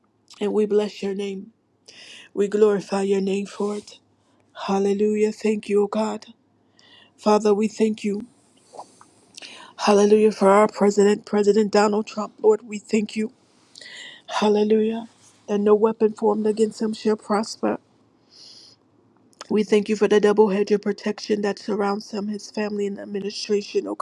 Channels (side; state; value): both; identical; correlation 1.00